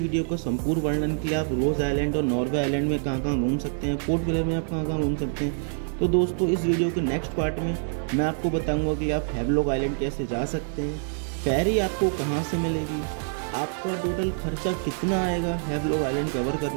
का संपूर्ण वर्णन कि आप रोज़ आइलैंड और नॉर्वे आइलैंड में कहाँ कहाँ घूम सकते हैं, पोर्ट विलियर में आप कहाँ कहाँ घूम सकते हैं। तो दोस्तों, इस वीडियो के नेक्स्ट पार्ट में मैं आपको बताऊंगा कि आप हैवलॉक आइलैंड कैसे जा सकते हैं, फेरी आपको कहाँ से मिलेगी, आपका टोटल खर्चा कितना आएगा हैवलॉक आइलैंड कवर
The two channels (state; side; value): silent; left; 61 dB below the other